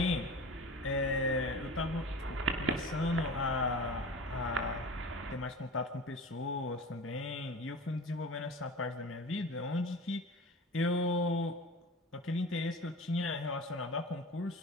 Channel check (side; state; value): both; normal; correlation 0.35